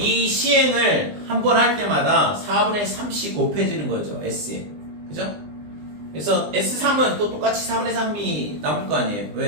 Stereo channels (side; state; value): left; late; 20 ms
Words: 시행을 한 번 할 때마다 4분의 3씩 곱해지는 거죠, S에. 그죠? 그래서 S3은 또 똑같이 4분의 3이 남을 거 아니에요.